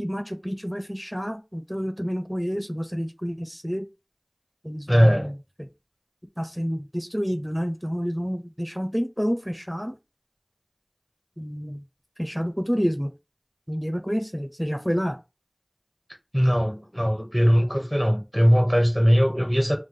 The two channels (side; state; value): both; identical; correlation 1.00